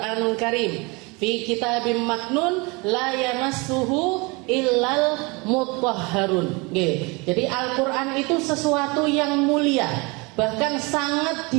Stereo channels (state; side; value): quieter; left; 27.5 dB